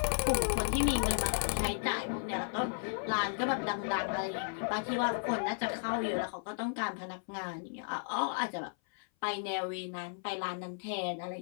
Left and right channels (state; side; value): silent; right; 55 dB below the other